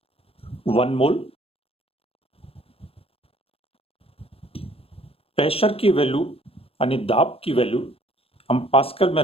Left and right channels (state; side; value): late; right; 0.28 ms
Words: 1 mole, pressure की वैल्यू यानी दाब की वैल्यू हम पास्कल में